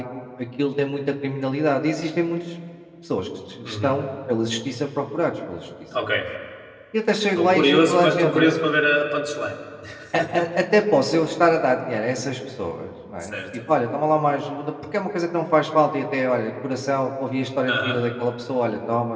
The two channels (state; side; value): identical; both; correlation 1.00